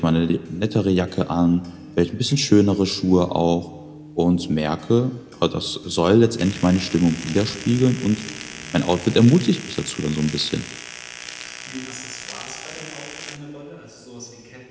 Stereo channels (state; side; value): identical; both; correlation 1.00